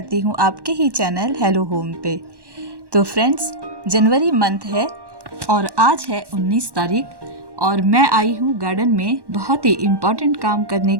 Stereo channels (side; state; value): left; late; 1.1 ms